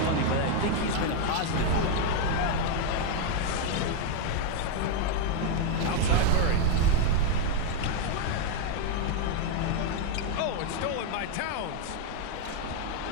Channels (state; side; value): different; both; correlation 0.01